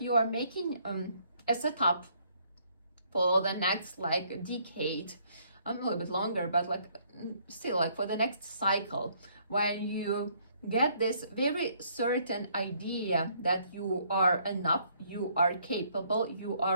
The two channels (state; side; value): inverted; both; correlation -0.66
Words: are making a setup for the next like decade, a little bit longer, but like still like for the next cycle, when you get this very certain idea that you are enough, you are capable, you